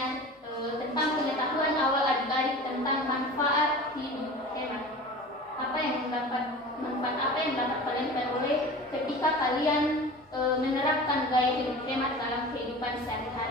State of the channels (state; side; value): normal; both; correlation 0.37